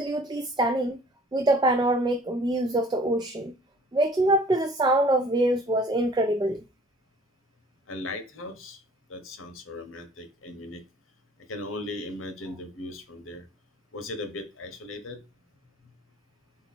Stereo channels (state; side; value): normal; both; correlation 0.52